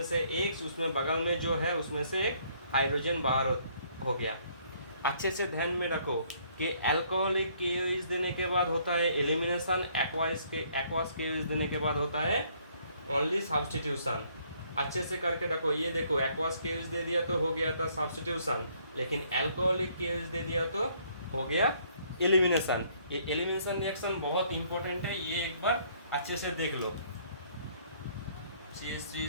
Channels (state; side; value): inverted; both; correlation -0.64